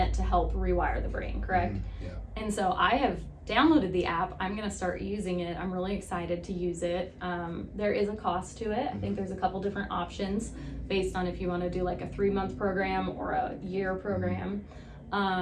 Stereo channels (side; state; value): both; identical; correlation 1.00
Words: to help rewire the brain, correct? Yeah. And so I have downloaded the app. I'm going to start using it. I'm really excited to use it. There is a cost to it. I think there's a couple different options based on if you want to do like a 3-month program or a year program.